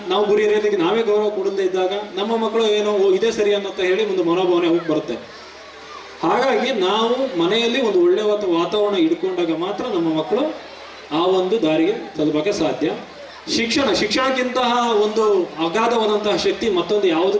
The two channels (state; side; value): identical; both; correlation 1.00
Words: ನಾವು ಗುರಿ ಹಿರಿಯರಿಗೆ ನಾವೇ ಗೌರವ ಕೊಡದೇ ಇದ್ದಾಗ ನಮ್ಮ ಮಕ್ಕಳು ಏನೋ ಇದೇ ಸರಿ ಅನ್ನೋಂತ ಹೇಳಿ ಒಂದು ಮನೋಭಾವನೆ ಹೋಗಿ ಬರುತ್ತೆ. ಹಾಗಾಗಿ ನಾವು ಮನೆಯಲ್ಲಿ ಒಂದು ಒಳ್ಳೆ ವಾತಾವರಣ ಇಟ್ಕೊಂಡಾಗ ಮಾತ್ರ ನಮ್ಮ ಮಕ್ಕಳು ಆ ಒಂದು ದಾರಿಗೆ ತಲುಪಕ್ಕೆ ಸಾಧ್ಯ. ಶಿಕ್ಷಣಕ್ಕಿಂತಹ ಒಂದು ಅಗಾಧವಾದಂತಹ ಶಕ್ತಿ ಮತ್ತೊಂದು